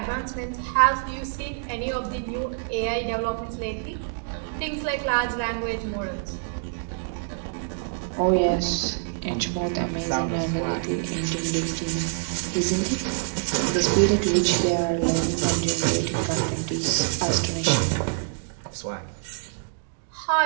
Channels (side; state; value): left; silent; digital silence